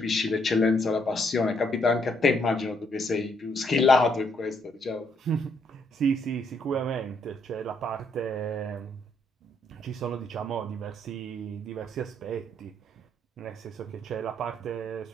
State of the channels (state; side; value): normal; both; correlation 0.72